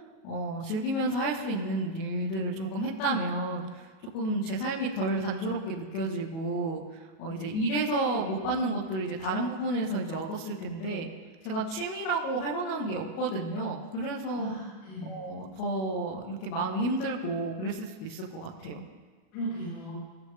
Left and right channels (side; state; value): right; late; 37 ms